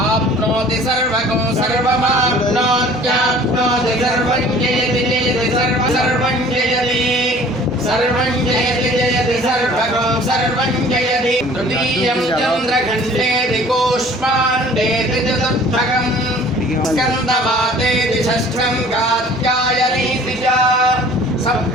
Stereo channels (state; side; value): normal; both; correlation 0.50